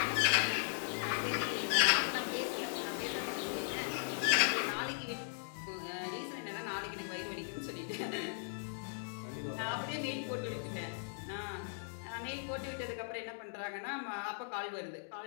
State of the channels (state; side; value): silent; right; digital silence